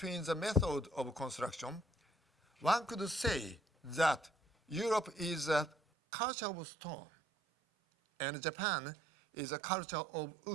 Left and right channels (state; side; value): drops out; left; at 5.8 s